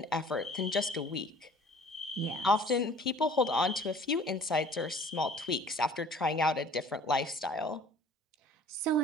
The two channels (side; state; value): both; normal; correlation 0.50